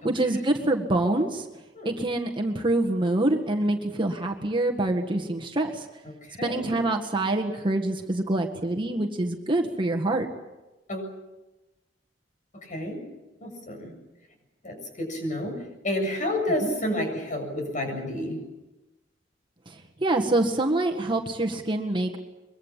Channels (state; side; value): normal; both; correlation 0.60